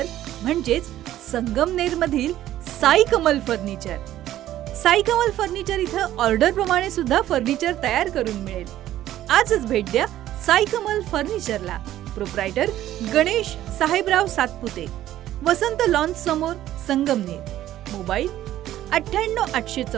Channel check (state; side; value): quieter; left; 13.2 dB